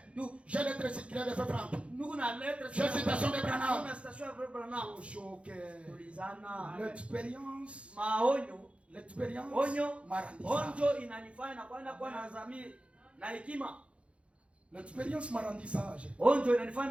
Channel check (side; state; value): left; late; 0.061 ms